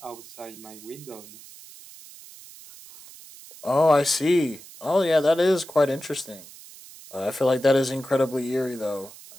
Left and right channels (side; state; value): right; noise; hiss, 19 dB below the sound